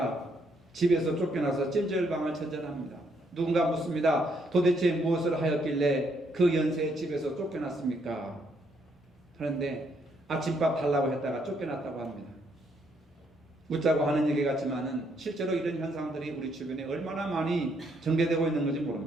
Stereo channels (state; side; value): normal; both; correlation 0.72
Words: 집에서 쫓겨나서 찜질방을 전전합니다. 누군가 묻습니다. 도대체 무엇을 하였길래 그 연세에 집에서 쫓겨났습니까? 하는데 아침밥 달라고 했다가 쫓겨났다고 합니다. 웃자고 하는 얘기 같지만은 실제로 이런 현상들이 우리 주변에 얼마나 많이 전개되고 있는 건지